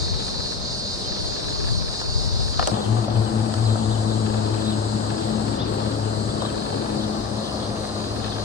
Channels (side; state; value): right; quieter; 5.3 dB